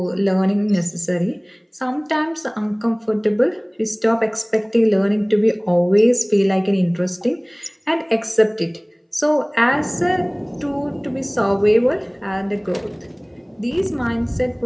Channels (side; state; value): both; identical; correlation 1.00